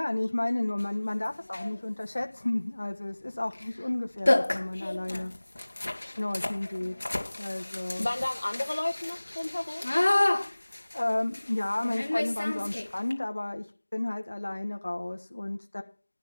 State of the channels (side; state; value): both; inverted; correlation -1.00